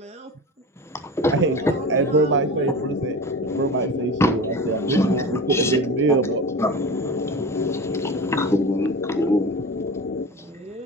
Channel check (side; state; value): both; normal; correlation 0.31